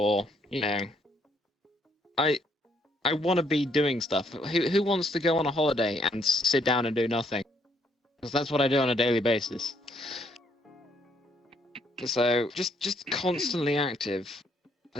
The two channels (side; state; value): both; normal; correlation 0.69